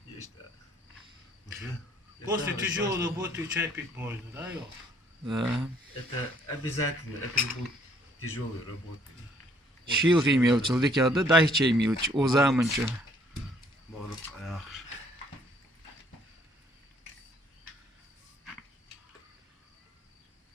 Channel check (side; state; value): both; normal; correlation 0.63